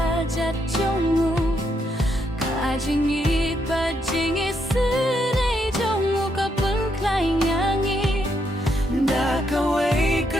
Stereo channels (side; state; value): both; normal; correlation 0.77